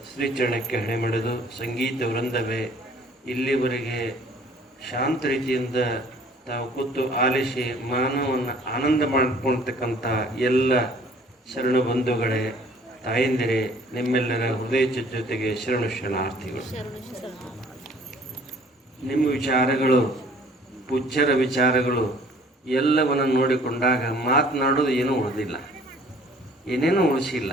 ಶ್ರೀಚರಣಕ್ಕೆ ಹಣೆಮಣೆದು ಸಂಗೀತ ವೃಂದವೇ ಇಲ್ಲಿವರೆಗೆ ಶಾಂತ ರೀತಿಯಿಂದ ತಾವು ಕೂತು ಆಲಿಸಿ ಮಾನವವನ್ನು ಆನಂದ ಮಾಡಿಕೊಳ್ತಕ್ಕಂಥ ಎಲ್ಲ ಶರಣ ಬಂಧುಗಳೇ, ತಾಯಂದಿರೇ, ನಿಮ್ಮೆಲ್ಲರ ಹೃದಯ ಜೊತೆಗೆ ಶರಣು ಶರಣಾರ್ಥಿಗಳು. ನಿಮ್ಮ ವಿಚಾರಗಳು, ಪೂಜ್ಯರ ವಿಚಾರಗಳು ಎಲ್ಲವನ್ನು ನೋಡಿಕೊಂಡಾಗ ಮಾತನಾಡೋದು ಏನೂ ಉಳಿದಿಲ್ಲ, ಏನೇನೂ ಉಳಿಸಿಲ್ಲ.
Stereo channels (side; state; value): both; normal; correlation 0.55